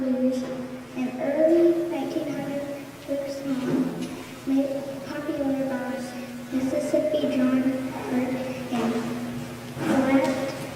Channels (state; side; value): identical; both; correlation 1.00